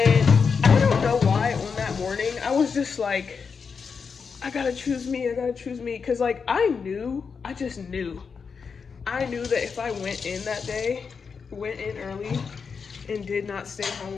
I don't know why on that morning I was just like, I gotta choose me, because like I just knew. I knew that if I went in that day, went in early, and did not stay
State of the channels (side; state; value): right; quieter; 5.7 dB